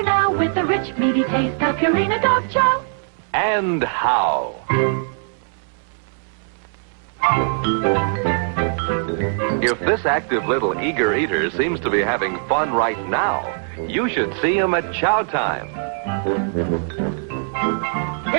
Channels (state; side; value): silent; left; 65 dB below the other